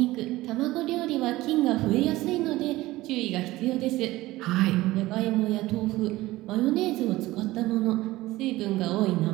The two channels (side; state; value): left; quieter; 17.9 dB